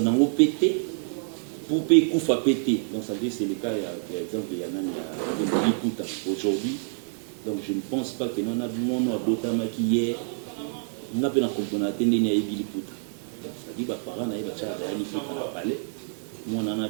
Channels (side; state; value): left; silent; digital silence